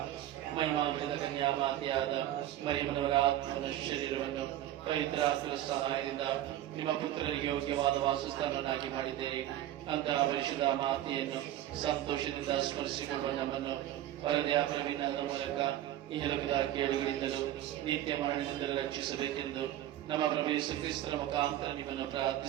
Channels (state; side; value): quieter; left; 13.1 dB